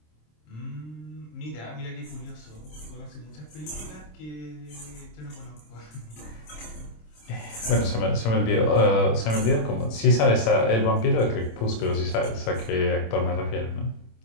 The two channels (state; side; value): late; right; 26 ms